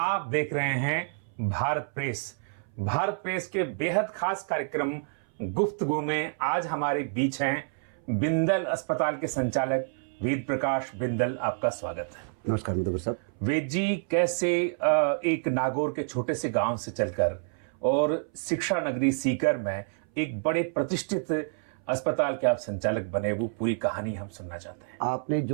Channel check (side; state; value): left; silent; 59 dB below the other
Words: देख रहे हैं भारत प्रेस। भारत प्रेस के बेहद खास कार्यक्रम गुफ्तगू में आज हमारे बीच हैं बिंदल अस्पताल के संचालक वेद प्रकाश बिंदल। आपका स्वागत है। नमस्कार मधुकर साहब। वेद जी, कैसे एक नागौर के छोटे से गांव से चलकर और शिक्षा नगरी सीकर में एक बड़े प्रतिष्ठित अस्पताल के आप संचालक बने, वो पूरी कहानी हम सुनना चाहते हैं। आपने